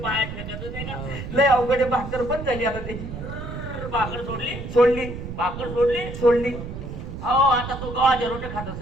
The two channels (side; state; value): right; noise; rumble, 8 dB below the sound